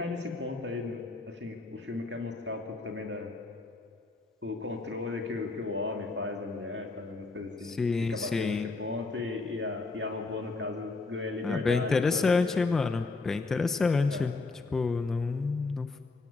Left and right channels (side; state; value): right; quieter; 3.7 dB